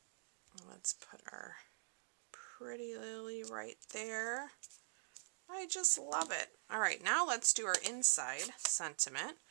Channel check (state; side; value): silent; left; digital silence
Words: Let's put our pretty lily right there. I just love it. Alright, now let's do our inside sentiment